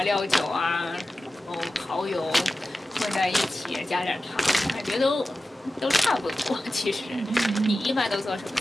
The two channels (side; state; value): both; normal; correlation 0.94